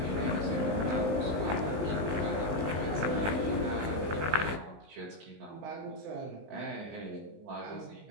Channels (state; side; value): late; left; 19 ms